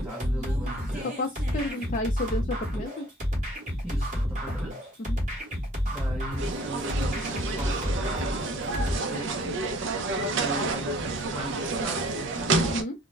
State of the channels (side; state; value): both; normal; correlation 0.53